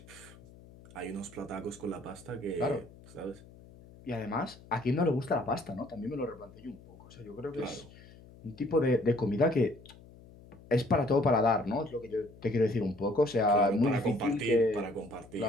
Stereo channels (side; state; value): left; noise; hum, 21 dB below the sound